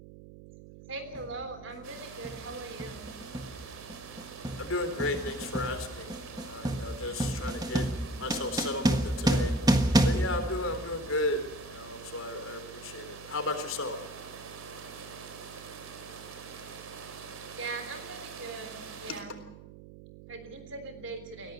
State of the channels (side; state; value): right; noise; hum, 16 dB below the sound